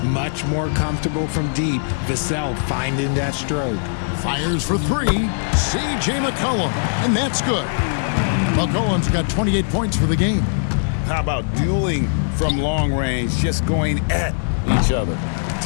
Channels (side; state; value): right; silent; digital silence